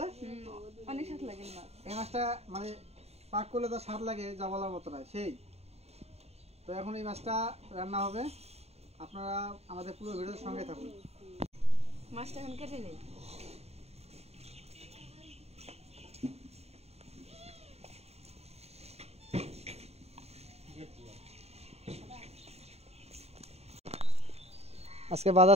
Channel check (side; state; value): left; late; 0.30 ms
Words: অনেক স্বাদ লাগে মাছ। এই মাছটা মানে পাক করলে তো স্বাদ লাগে যা বলার মতো নয় সেই। তো এখন এই মাছটা রান্না হবে, আপনারা আমাদের পুরো ভিডিওর সঙ্গে থাকুন। মাছটা এখন কেটে নেই। আজকে